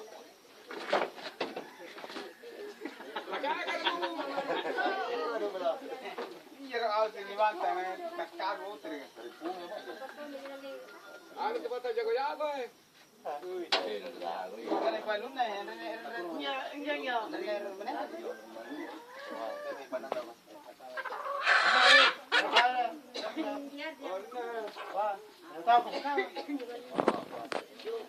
Iya kalau sini mantap, kakak motor. Aku cepat aja kau ya, boy. Bukan yang paling lunak ya, enggak. Mana?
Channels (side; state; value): both; identical; correlation 1.00